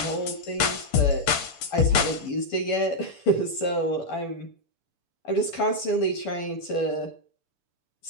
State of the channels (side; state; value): right; late; 6.9 ms